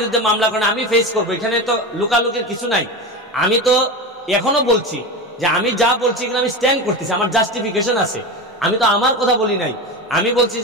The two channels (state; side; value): normal; both; correlation 0.23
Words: মামলা করেন, আমি ফেস করবো। এখানে তো লুকালুকির কিছু নাই। আমি তো এখনো বলছি যে আমি যা বলছি এগুলো আমি স্ট্যান্ড করতেছি, আমার জাস্টিফিকেশন আছে। আমি তো আমার কথা বলি নাই। আমি বলছি